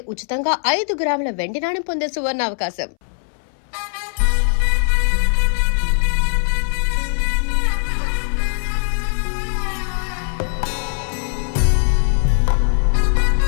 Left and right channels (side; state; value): right; silent; 65 dB below the other